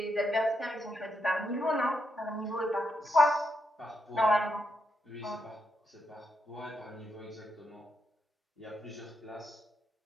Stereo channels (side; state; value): both; normal; correlation 0.82